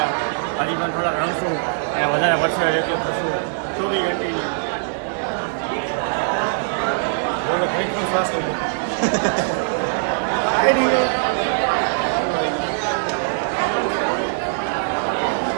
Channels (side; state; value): left; silent; digital silence